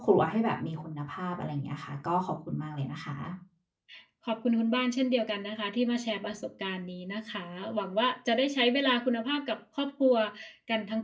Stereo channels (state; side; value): identical; both; correlation 1.00